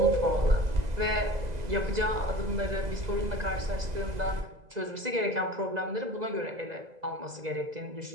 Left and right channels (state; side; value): late; left; 2.0 ms